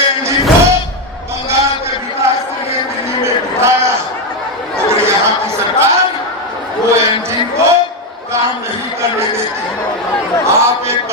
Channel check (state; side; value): normal; both; correlation 0.08